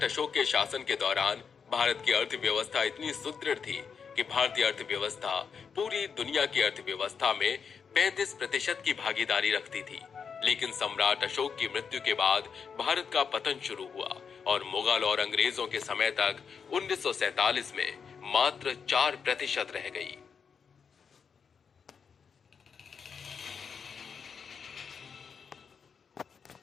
अशोक के शासन के दौरान भारत की अर्थव्यवस्था इतनी सुदृढ़ थी कि भारतीय अर्थव्यवस्था पूरी दुनिया की अर्थव्यवस्था में 35% की भागीदारी रखती थी। लेकिन सम्राट अशोक की मृत्यु के बाद भारत का पतन शुरू हुआ और मुगल और अंग्रेजों के समय तक 1947 में मात्र 4% रह गई।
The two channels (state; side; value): quieter; right; 6.3 dB